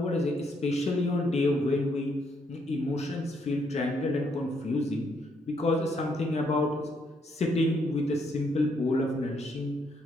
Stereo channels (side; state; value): both; normal; correlation 0.73